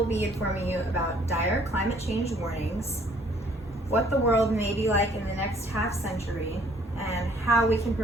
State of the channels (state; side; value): normal; both; correlation 0.60